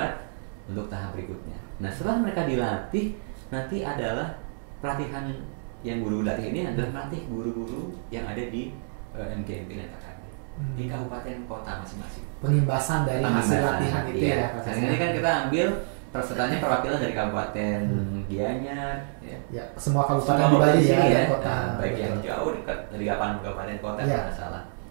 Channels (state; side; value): silent; left; digital silence